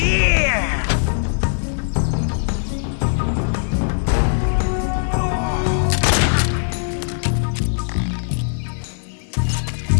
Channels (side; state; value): right; silent; digital silence